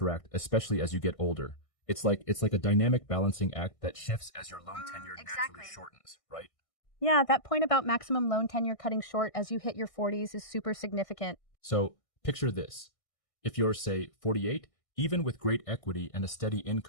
especially as you get older. It's like a dynamic balancing act that shifts as your loan tenure naturally Exactly. shortens, right? Yeah, that point about maximum loan tenure cutting short as you hit your 40s is super significant. So picture this. If you're, say, 48, even with great equity and a steady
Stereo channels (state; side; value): late; right; 1.6 ms